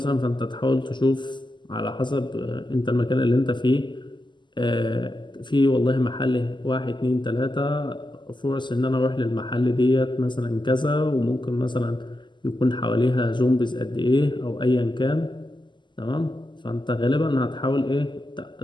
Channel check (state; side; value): late; right; 0.22 ms